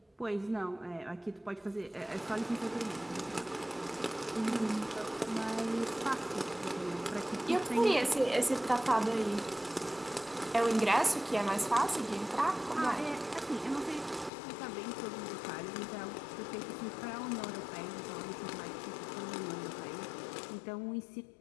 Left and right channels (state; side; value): drops out; right; at 14.3 s